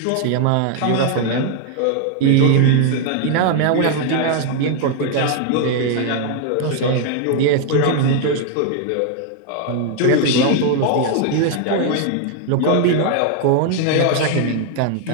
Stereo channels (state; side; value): different; both; correlation 0.00